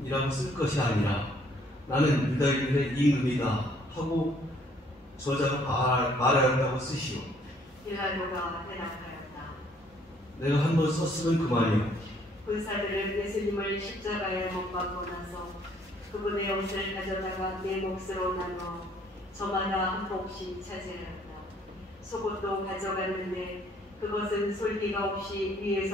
쓸 것이 아니라 나는 유다인들의 임금이다 하고 저자가 말하였다고 쓰시오. 빌라도가 대답하였다. 내가 한 번 썼으면 그만이요. 군사들은 예수님을 십자가에 못 박고 나서 그분의 옷을 가져다가 네 몫으로 나눠 저마다 한 몫씩 차지하였다. 속옷도 가져갔는데 그것은 솔기가 없이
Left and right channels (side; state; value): both; normal; correlation 0.63